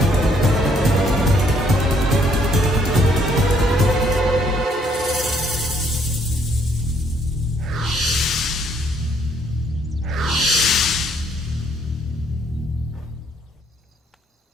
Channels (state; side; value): normal; both; correlation 0.67